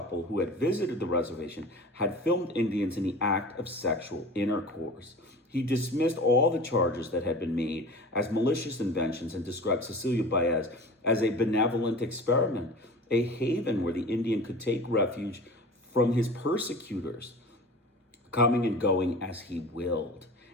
who had visited the reservation had filmed Indians in the act of sexual intercourse. He dismissed all the charges that had been made as malicious inventions and described Cecilio Baez as a benevolent experiment, a haven where the Indian could take refuge from his persecutors, coming and going as he willed.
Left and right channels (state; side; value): normal; both; correlation 0.37